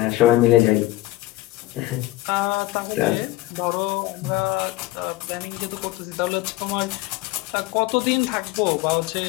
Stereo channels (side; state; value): right; quieter; 17.7 dB